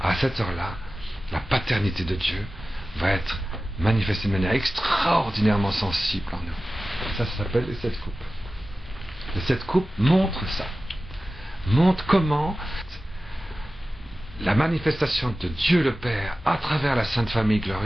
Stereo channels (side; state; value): both; normal; correlation 0.95